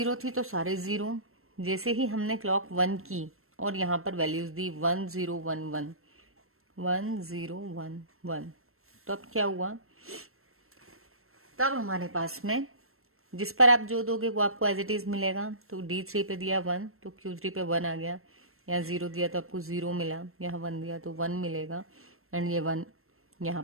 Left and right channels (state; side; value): late; left; 0.62 ms